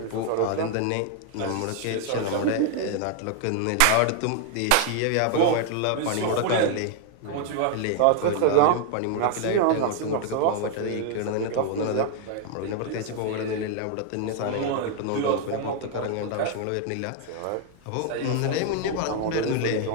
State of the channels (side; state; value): both; different; correlation 0.00